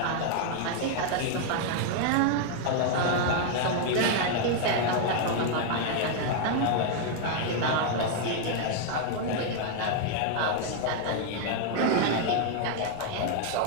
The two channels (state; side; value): different; both; correlation 0.00